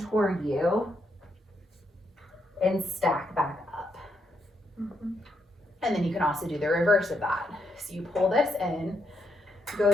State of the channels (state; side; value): normal; both; correlation 0.79